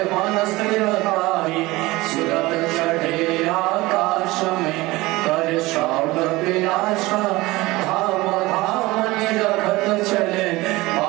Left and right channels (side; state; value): left; quieter; 20.5 dB